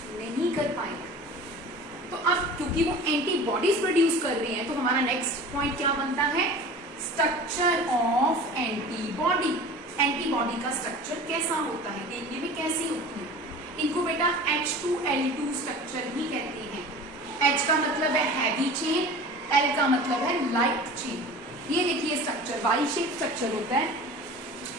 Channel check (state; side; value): normal; both; correlation 0.39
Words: नहीं कर पाएगा. तो अब क्योंकि वो एंटीबॉडीज प्रोड्यूस कर रहे हैं तो हमारा नेक्स्ट पॉइंट क्या बनता है? Structure of antibody. एंटीबॉडी का स्ट्रक्चर कैसा होता है, देखने में कैसी होती है? इनको बेटा H2L2 स्ट्रक्चर भी कहते हैं. H का मतलब है हैवी चेन, L का मतलब है लाइट चेन. ये देखिए स्ट्रक्चर वाई शेप स्ट्रक्चर होता है,